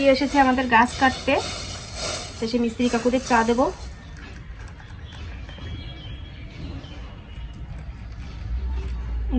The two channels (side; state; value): both; identical; correlation 1.00